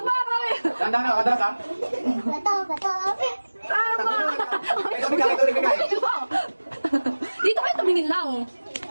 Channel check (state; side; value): inverted; both; correlation -1.00